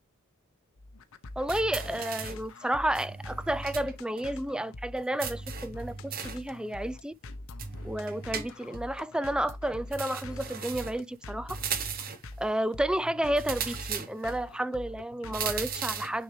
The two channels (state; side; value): normal; both; correlation 0.82